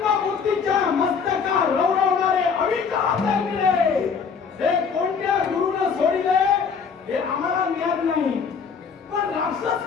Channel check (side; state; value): right; quieter; 5.9 dB